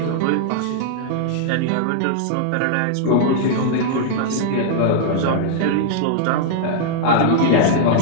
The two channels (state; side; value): different; both; correlation -0.01